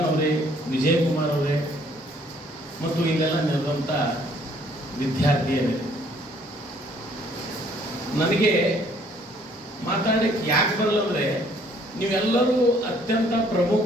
ಅವರೇ, ವಿಜಯಕುಮಾರ್ ಅವರೇ, ಮತ್ತು ಇಲ್ಲೆಲ್ಲ ನೆರೆದಂಥ ವಿದ್ಯಾರ್ಥಿಯರೇ, ನನಗೆ ಮಾತಾಡಲಿಕ್ಕೆ ಯಾಕೆ ಬರಲ್ಲ ಅಂದರೆ ನೀವೆಲ್ಲರೂ ಅತ್ಯಂತ ಪ್ರಮುಖ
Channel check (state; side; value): normal; both; correlation 0.62